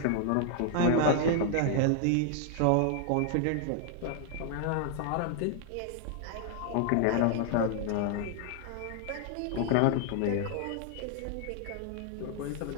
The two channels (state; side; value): different; both; correlation 0.00